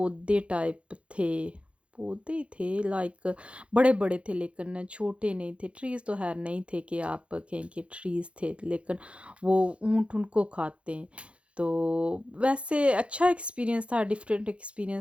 टाइप थे। पौधे ही थे, लाइक बड़े-बड़े थे लेकिन छोटे नहीं थे। ट्रीज़ तो ख़ैर नहीं थे कि आप कहें कि ट्रीज़ थे, लेकिन वो ऊँट उनको खाते हैं। तो वैसे अच्छा एक्सपीरियंस था, डिफरेंट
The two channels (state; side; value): late; left; 0.060 ms